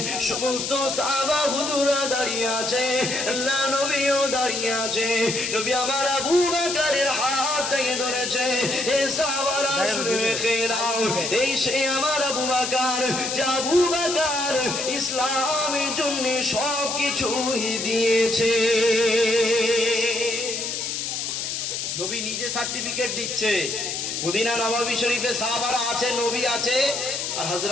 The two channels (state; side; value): noise; left; hiss, 3 dB below the sound